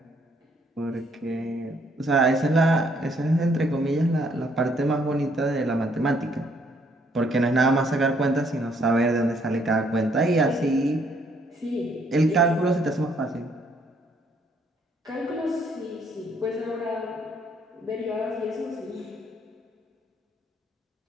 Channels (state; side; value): normal; both; correlation 0.67